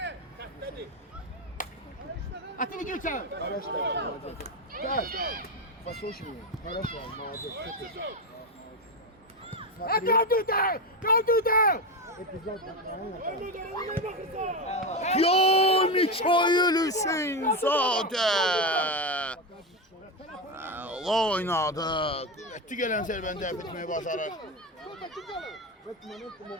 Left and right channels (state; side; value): normal; both; correlation 0.13